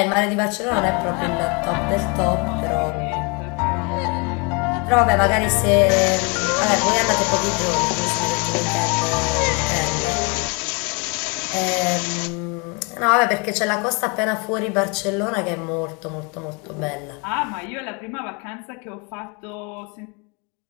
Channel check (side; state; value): right; quieter; 31.5 dB